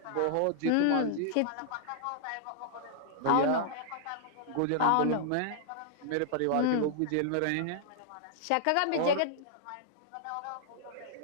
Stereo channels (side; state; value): both; different; correlation -0.01